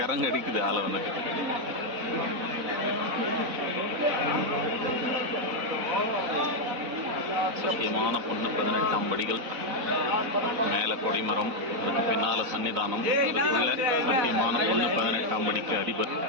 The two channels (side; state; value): left; late; 4.0 ms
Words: அடிக்குது ஆளை வந்துட்டு. சத்தியமான பொண்ணு 18ஆம் படிகள், மேலே கொடிமரம், அதுக்கு பின்னால சன்னிதானம், அதுக்குள்ள சத்தியமான பொண்ணு 18ஆம் படிக்கு அதிபர்